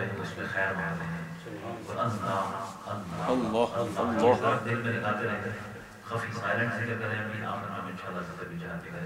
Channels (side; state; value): both; identical; correlation 1.00